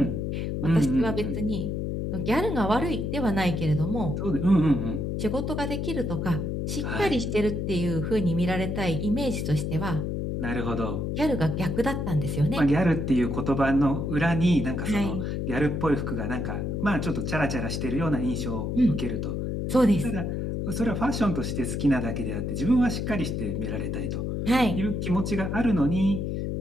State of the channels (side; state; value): left; noise; hum, 2 dB below the sound